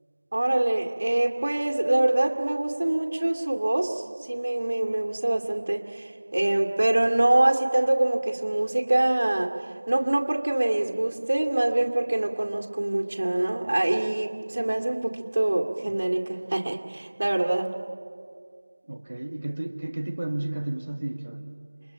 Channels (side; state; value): both; inverted; correlation -1.00